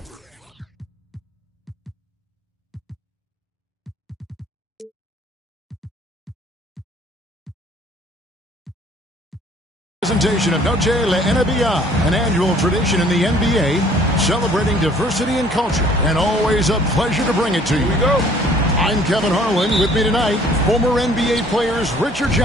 presentation of Noche La NBA, an annual tradition in the NBA, celebrating diversity and culture, and always a pleasure to bring it to you. Here we go. I'm Kevin Harlan. With me tonight, former NBA players Richard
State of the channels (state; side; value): normal; both; correlation 0.56